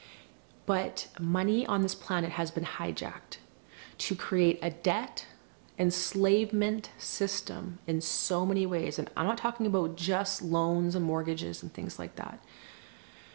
But money on this planet has been hijacked to create a debt enslavement system in so many ways. And I'm not talking about just loans and mortgages and things like that,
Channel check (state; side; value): silent; left; digital silence